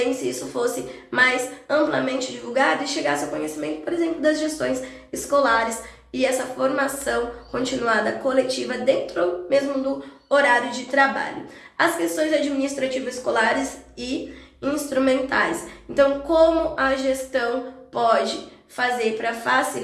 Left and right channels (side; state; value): both; identical; correlation 1.00